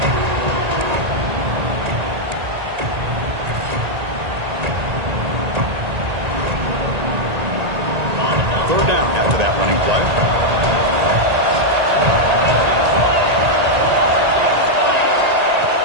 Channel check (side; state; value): left; late; 1.8 ms